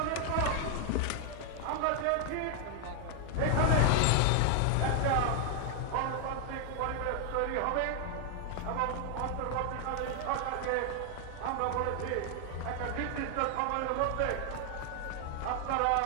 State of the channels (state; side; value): different; both; correlation 0.00